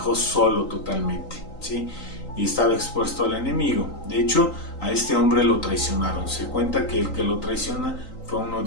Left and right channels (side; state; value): right; late; 3.8 ms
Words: solo totalmente, ¿sí? Y estaba expuesto al enemigo. De hecho, a este hombre lo traicionaron. Se cuenta que el que lo traiciona fue uno